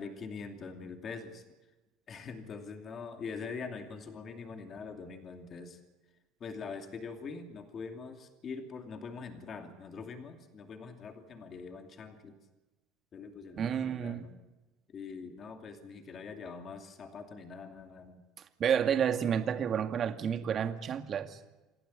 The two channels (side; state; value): left; quieter; 4.9 dB